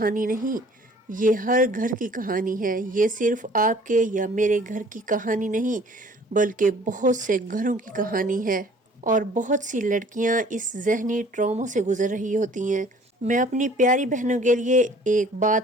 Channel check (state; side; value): normal; both; correlation 0.53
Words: نہیں، یہ ہر گھر کی کہانی ہے۔ یہ صرف آپ کے یا میرے گھر کی کہانی نہیں، بلکہ بہت سے گھروں کی کہانی ہے، اور بہت سی لڑکیاں اس ذہنی ٹراما سے گزر رہی ہوتی ہیں۔ میں اپنی پیاری بہنوں کے لیے ایک